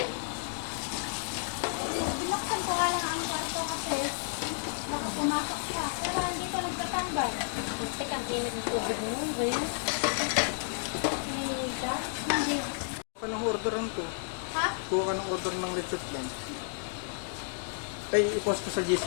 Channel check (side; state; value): right; silent; 57 dB below the other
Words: Binaksan ko nga lang ang kwarto kasi baka pumasok siya. Pero nandito nagtatambay. Tek ang init ng tubig mo. Ba yan? Pinahilig ka? Hindi. Kuha ka ng order lang to. Ha? Kuha ka ng order ng lechon plan. Ay, i-post ko sa